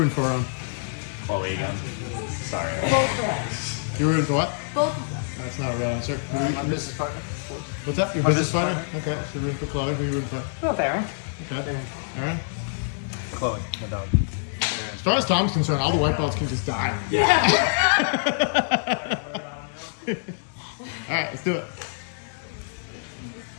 for? Chloe again. Sorry. Both You rooting for what? of them. That's not a real answer. My business partner. What's up? Your My business business partner? Okay, so you're rooting for Chloe. Who you rooting for? Both Aaron. Okay. Aaron? Chloe, my dog. As far as Tom's concerned, all the white balls can just die. Yeah. All right, let's do it.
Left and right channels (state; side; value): silent; right; digital silence